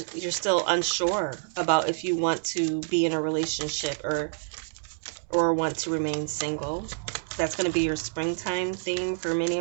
still unsure about if you want to be in a relationship or want to remain single. That's going to be your springtime theme for many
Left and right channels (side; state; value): left; silent; 60 dB below the other